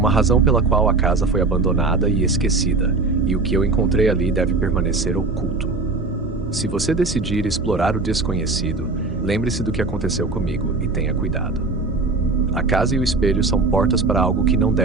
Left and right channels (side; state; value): left; quieter; 3.7 dB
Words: razão pela qual a casa foi abandonada e esquecida, e o que eu encontrei ali deve permanecer oculto. Se você decidir explorar o desconhecido, lembre-se do que aconteceu comigo e tenha cuidado. A casa e o espelho são portas para algo que não